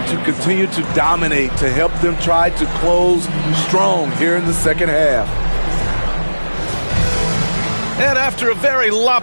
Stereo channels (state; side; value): inverted; both; correlation -1.00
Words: to continue to dominate, to help them try to close strong here in the second half. And after a very